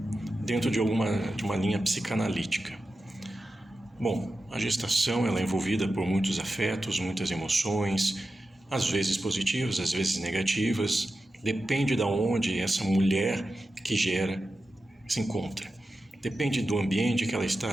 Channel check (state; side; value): normal; both; correlation 0.92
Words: dentro de uma linha psicanalítica. Bom, a gestação ela é envolvida por muitos afetos, muitas emoções, às vezes positivas, às vezes negativas, depende de onde essa mulher que gera se encontra. Depende do ambiente que ela